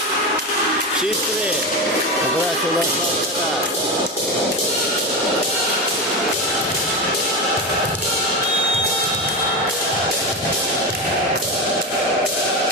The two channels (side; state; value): both; normal; correlation 0.19